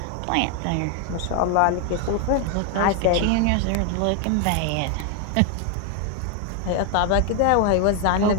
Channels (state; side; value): different; both; correlation 0.01